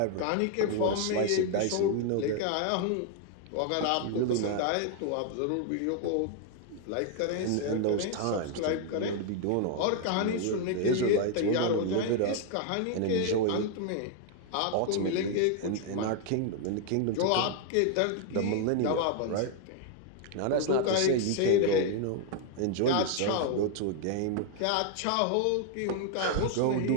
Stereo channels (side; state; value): both; different; correlation 0.00